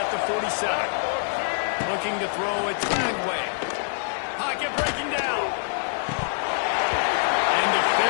the 47. Looking to throw it Dragway. Pocket breaking down. And the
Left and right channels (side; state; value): right; silent; digital silence